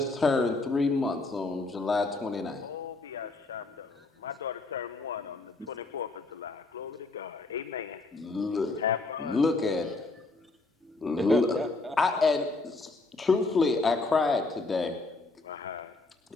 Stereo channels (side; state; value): right; quieter; 3.4 dB